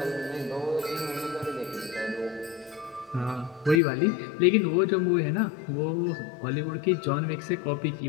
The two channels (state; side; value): drops out; right; at 3.8 s